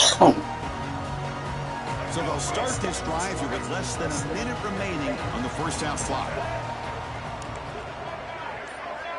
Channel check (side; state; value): both; identical; correlation 1.00